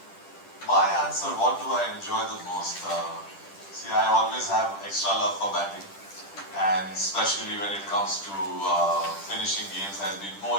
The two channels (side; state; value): right; late; 10 ms